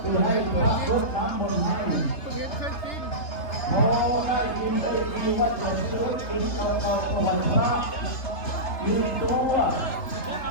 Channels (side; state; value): right; late; 3.3 ms